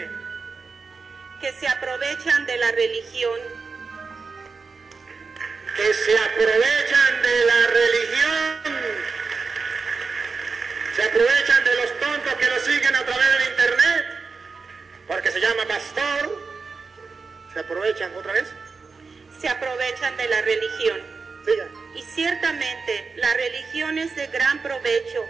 Que se aprovechan de la religión. Que se aprovechan de la religión. Se aprovechan de los tontos que lo siguen a través del internet. Porque se llama pastor. ¿Se aprovechan otra vez? Se aprovechan de la religión. Siga. Y ciertamente la religión es de gran provecho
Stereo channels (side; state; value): left; quieter; 4.6 dB